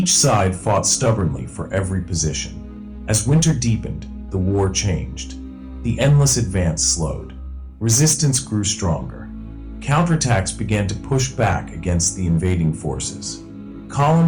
side fought stubbornly for every position. As winter deepened, the war changed. The endless advance slowed. Resistance grew stronger. Counterattacks began to push back against the invading forces.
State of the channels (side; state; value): both; identical; correlation 1.00